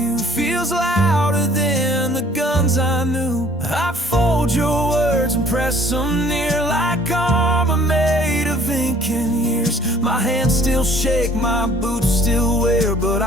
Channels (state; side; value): normal; both; correlation 0.56